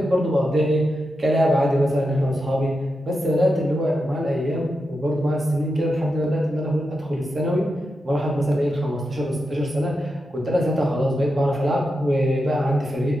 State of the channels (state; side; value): normal; both; correlation 0.88